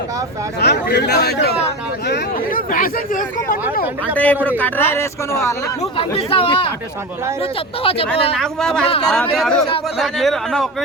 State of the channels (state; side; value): normal; both; correlation 0.25